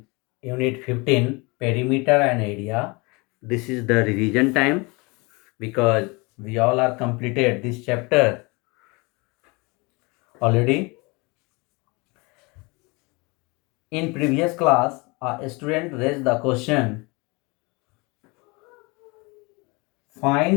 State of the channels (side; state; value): right; quieter; 27.1 dB